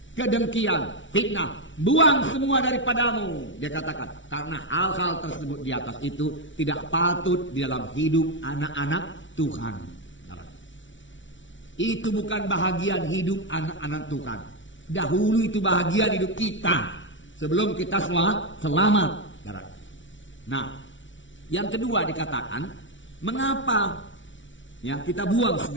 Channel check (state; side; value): late; right; 0.55 ms